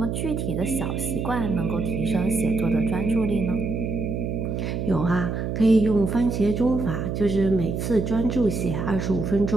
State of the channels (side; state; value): right; noise; hum, 2 dB below the sound